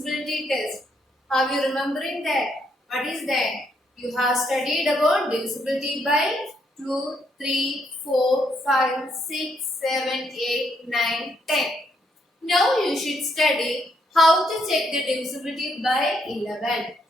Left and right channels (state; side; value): normal; both; correlation 0.74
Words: test. Are you remembering that? What is that? You have studied about divisibility by 2, 3, 4, 5, 6, 7, 8, 9, 10. Now you should study how to check the divisibility by 11.